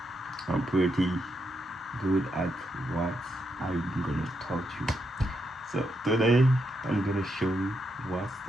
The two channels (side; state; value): both; normal; correlation 0.81